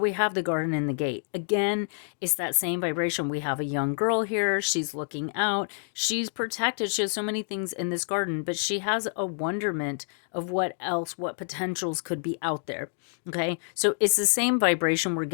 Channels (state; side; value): silent; right; digital silence